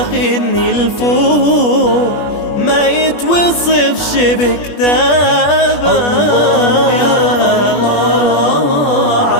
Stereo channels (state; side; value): late; right; 21 ms